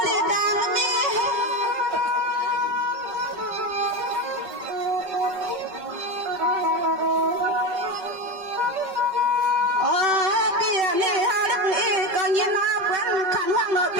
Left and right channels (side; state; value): left; late; 5.3 ms